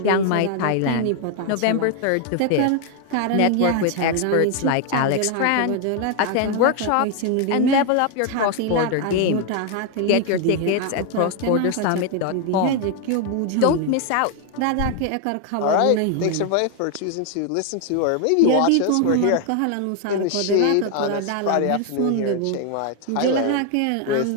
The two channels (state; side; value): different; both; correlation 0.01